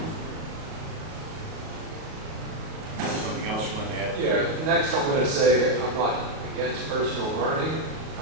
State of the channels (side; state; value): left; late; 38 ms